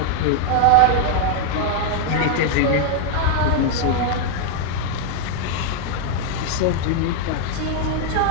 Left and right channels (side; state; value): both; different; correlation 0.00